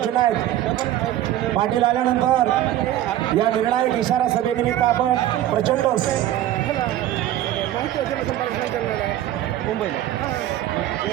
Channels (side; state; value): left; quieter; 13.0 dB